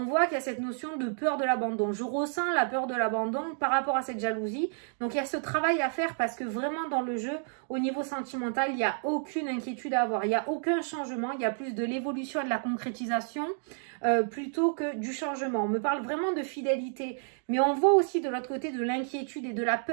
voit qu'il y a cette notion de peur de l'abandon. Je ressens la peur de l'abandon par rapport à cette jalousie. Donc, il y a ce travail à faire parce que vraiment dans le jeu, au niveau sentimental, il n'y a aucune inquiétude à avoir. Il n'y a aucun changement. Il y a plus de l'évolution et de la concrétisation plutôt que du changement. On me parle vraiment de fidélité. Mais on voit aussi de l'autre côté de l'inquiétude et de la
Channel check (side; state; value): left; silent; 58 dB below the other